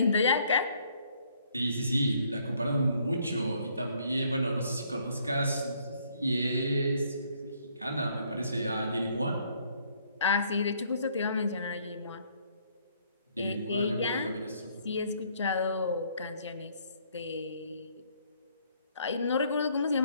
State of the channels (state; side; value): inverted; both; correlation -0.66